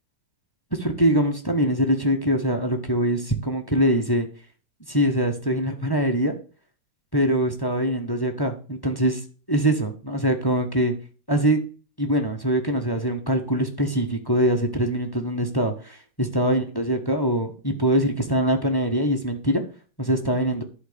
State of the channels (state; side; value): late; right; 1.1 ms